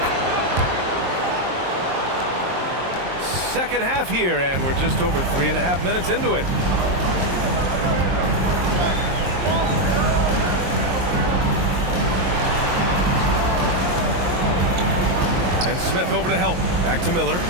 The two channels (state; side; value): late; left; 22 ms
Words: Second half here, and we're just over 3.5 minutes into it. And Smith over to help. Back to Miller.